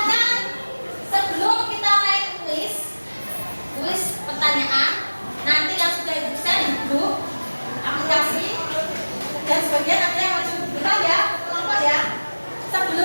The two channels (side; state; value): both; inverted; correlation -1.00